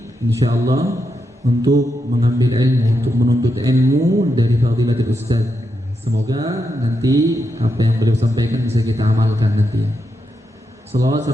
insyaallah, untuk mengambil ilmu, untuk menuntut ilmu dari Fadilatul Ustaz. Semoga nanti apa yang beliau sampaikan bisa kita amalkan nanti. Salawat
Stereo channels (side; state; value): both; normal; correlation 0.84